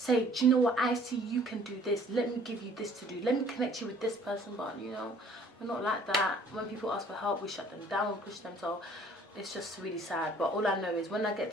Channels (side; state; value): both; normal; correlation 0.55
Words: do you know what, I see you can do this, let me give you this to do, let me connect you with this person. But, you know, we're not like that. When people ask for help, we shut them down and push them. So it's just really sad. But all I know is when I